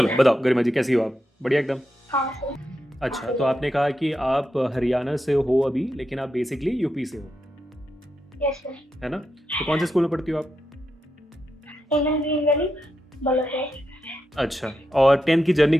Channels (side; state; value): both; normal; correlation 0.86